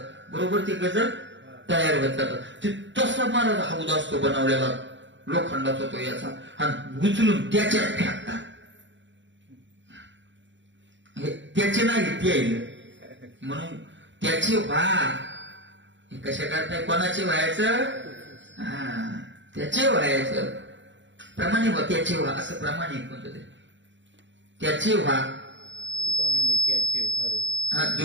बरोबर ते गज तयार होत जातात. ते तसा मला हौद असतो बनवलेला लोखंडाचा तो याचा, आणि उचलून त्याच्यात फेकतात. त्याचे नाही ते आहे म्हणून त्याचे हे कशा करताय? कोणाचे व्हायचं? त्याचे व्हायचं. प्रमाणे त्याचे व्हा, असं प्रमाणे कोणतं तरी त्याचे व्हा. तुका म्हणे त्याचे व्हारे.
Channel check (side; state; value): left; late; 0.54 ms